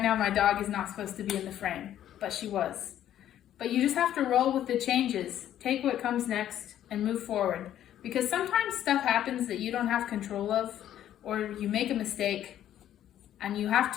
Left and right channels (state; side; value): quieter; right; 11.4 dB